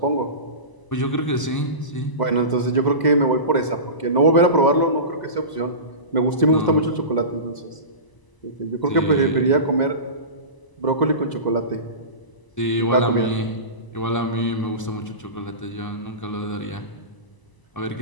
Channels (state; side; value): late; right; 1.0 ms